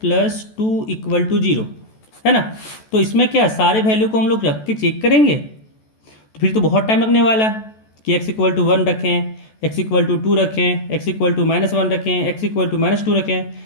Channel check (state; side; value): late; right; 14 ms